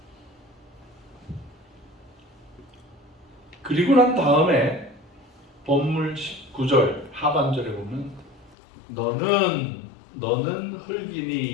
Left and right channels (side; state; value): right; drops out; at 8.6 s